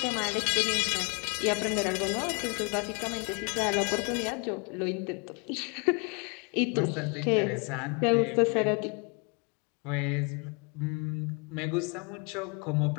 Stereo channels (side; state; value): right; quieter; 33.5 dB